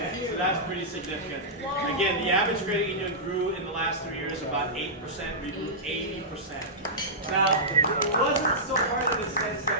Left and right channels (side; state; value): both; normal; correlation -0.13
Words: so that's pretty significant. Again, the average credit union grew in the last 3 years about 8%, we grew 80%. Now, it wasn't so hard in the sense